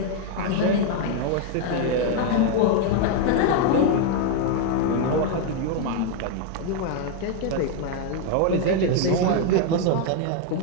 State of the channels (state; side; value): different; both; correlation 0.00